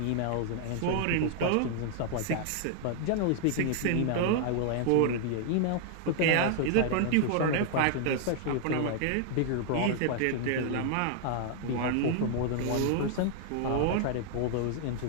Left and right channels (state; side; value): different; both; correlation 0.00